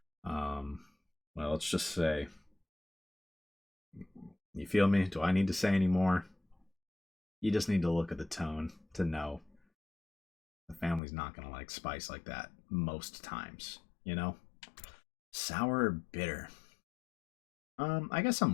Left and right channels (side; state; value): right; drops out; at 11.0 s